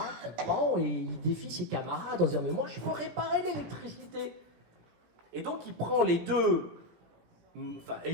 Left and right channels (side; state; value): left; late; 17 ms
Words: qui prend, et il défie ses camarades en disant « Mais moi, je peux réparer l'électricité !» Et donc, il prend les deux, et